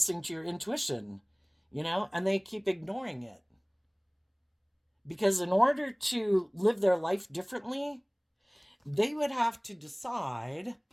to your intuition, and they keep ignoring it. Because in order to live their life differently, they would have to decide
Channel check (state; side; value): identical; both; correlation 1.00